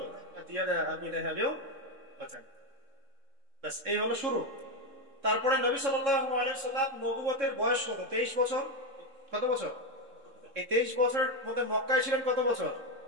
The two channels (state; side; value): late; left; 3.7 ms